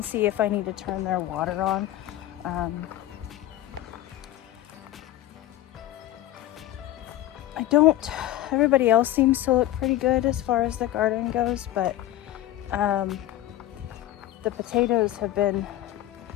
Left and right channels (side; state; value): right; quieter; 14.1 dB